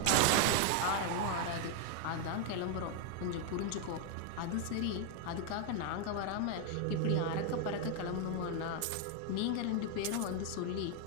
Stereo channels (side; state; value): both; different; correlation 0.01